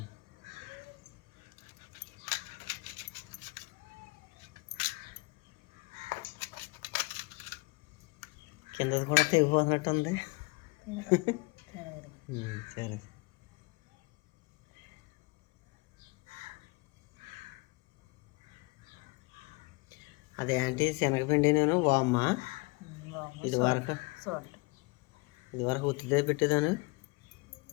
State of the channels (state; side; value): quieter; right; 26.3 dB